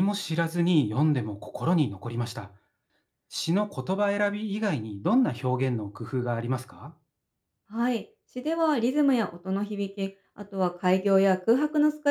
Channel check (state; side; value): identical; both; correlation 1.00